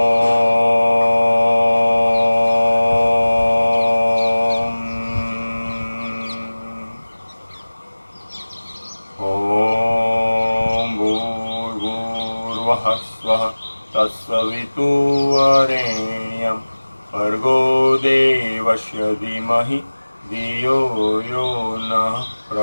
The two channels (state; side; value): inverted; both; correlation -1.00